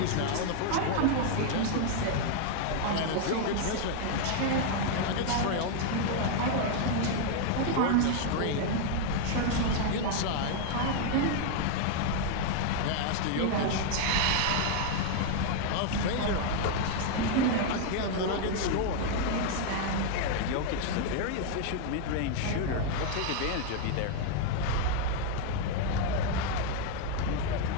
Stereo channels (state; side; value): different; both; correlation 0.00